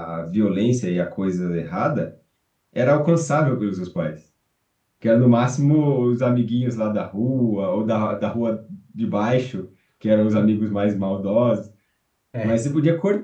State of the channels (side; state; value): both; identical; correlation 1.00